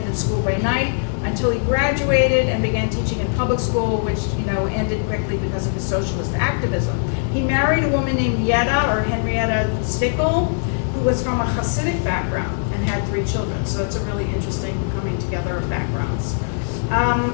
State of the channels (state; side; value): silent; right; digital silence